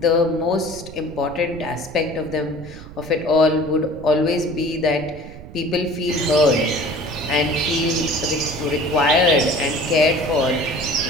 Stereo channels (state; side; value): noise; right; rumble, 15 dB below the sound